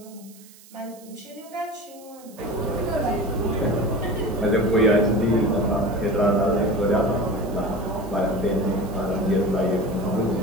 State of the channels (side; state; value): right; noise; hiss, 23 dB below the sound